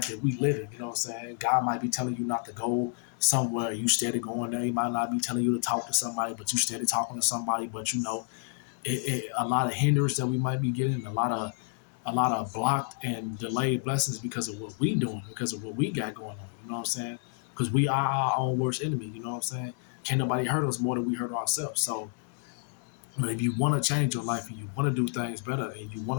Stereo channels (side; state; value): right; silent; 58 dB below the other